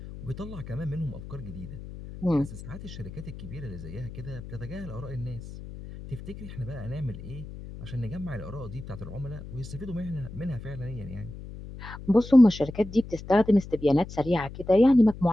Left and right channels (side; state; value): left; noise; hum, 12 dB below the sound